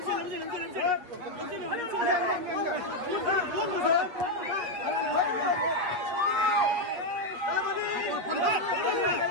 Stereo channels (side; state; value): left; late; 8.2 ms